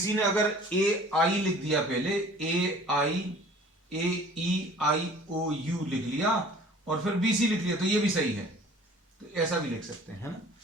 ने अगर ए आई लिख दिया पहले, ए आई ए ई आई ओ यू लिख लिया और फिर बी सी लिख लिया, तो ये भी सही है, तो ऐसा भी लिख सकते हैं, है ना।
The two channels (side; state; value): both; normal; correlation 0.49